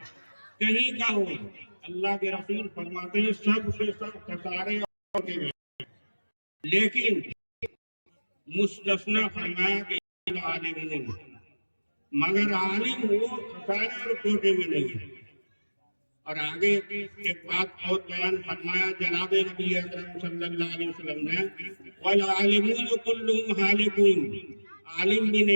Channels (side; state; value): both; inverted; correlation -1.00